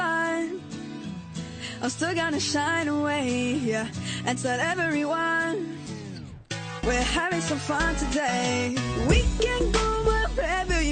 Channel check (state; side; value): identical; both; correlation 1.00